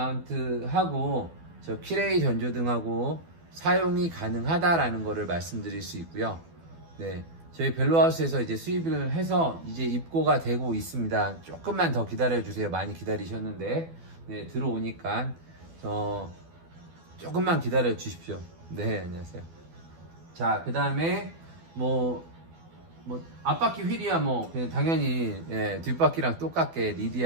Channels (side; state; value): left; late; 12 ms